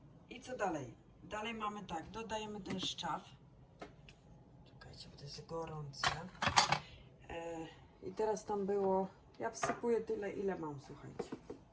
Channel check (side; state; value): both; identical; correlation 1.00